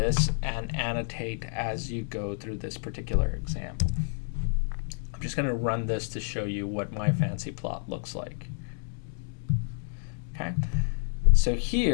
and annotate as you go through this particular example. I'm just going to run this to show you what my fancy plot looks like. Okay, so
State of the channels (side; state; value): right; silent; digital silence